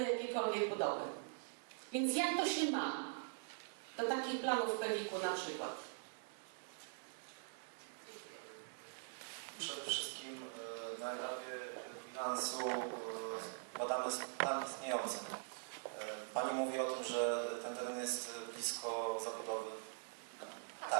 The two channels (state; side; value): silent; left; digital silence